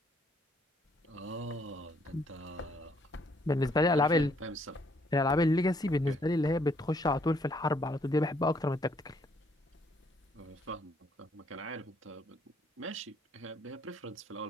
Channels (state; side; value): normal; both; correlation 0.67